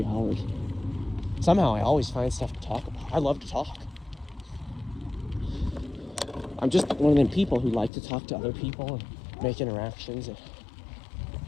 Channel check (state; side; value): drops out; right; at 7.9 s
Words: hours. Somehow I always find stuff to talk about. I love to talk. I'm just one of them people who like to talk to other people and make interactions. And